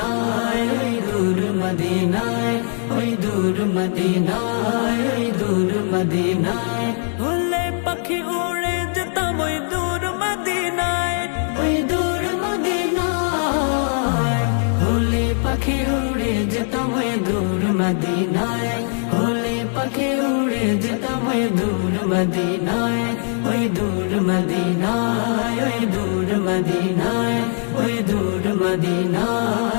ওই দূর মদিনায়, ওই দূর মদিনায়, ওই দূর মদিনায়, হলে পাখি উড়ে যেতাম ওই দূর মদিনায়, ওই দূর মদিনায়, হলে পাখি উড়ে যেতাম ওই দূর মদিনায়, হলে পাখি উড়ে যেতাম ওই দূর মদিনায়, ওই দূর মদিনায়, ওই দূর মদিনায়, ওই দূর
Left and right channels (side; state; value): right; silent; 61 dB below the other